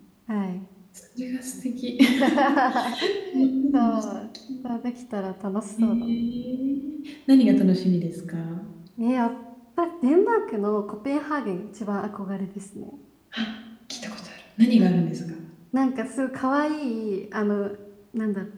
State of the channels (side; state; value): both; identical; correlation 1.00